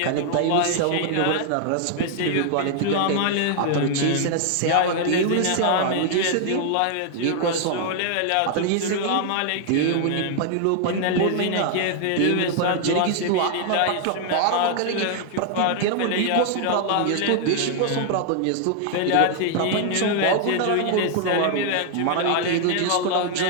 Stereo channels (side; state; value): both; different; correlation 0.00